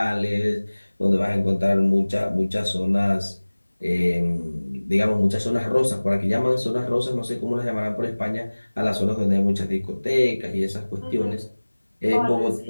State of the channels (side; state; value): both; inverted; correlation -1.00